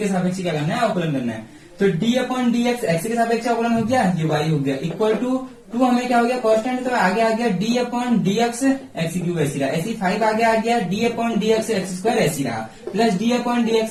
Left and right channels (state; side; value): identical; both; correlation 1.00